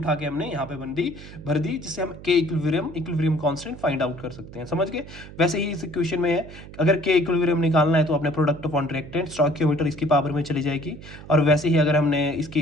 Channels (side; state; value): right; noise; hum, 16 dB below the sound